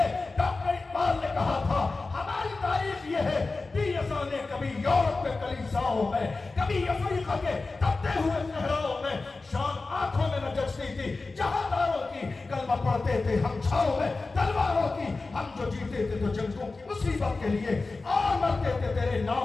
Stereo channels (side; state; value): right; quieter; 3.7 dB